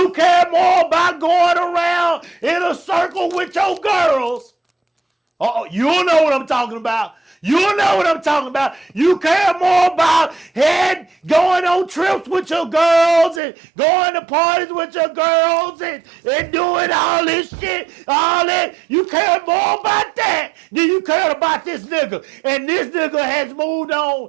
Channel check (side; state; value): left; drops out; at 13.4 s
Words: care more about going around in a circle with your girls. You know what I'm talking about. You care more about going on trips with your girls and going to parties with your girls and doing all this shit, all that. You care more about that than you care about this nigga. And this nigga has moved on